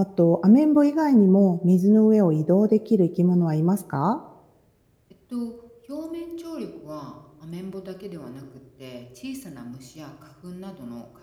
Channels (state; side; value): identical; both; correlation 1.00